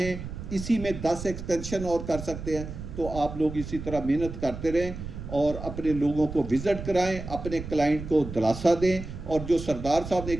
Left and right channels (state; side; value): noise; right; rumble, 9 dB below the sound